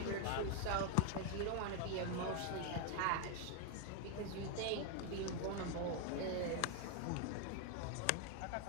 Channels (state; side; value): different; both; correlation 0.01